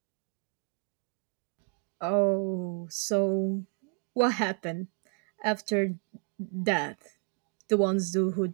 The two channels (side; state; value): left; quieter; 35.0 dB